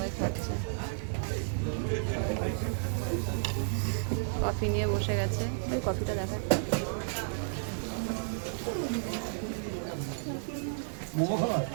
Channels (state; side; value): silent; left; digital silence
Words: খাচ্ছে। কফি নিয়ে বসে গেছে, ওই কফিটা দেখা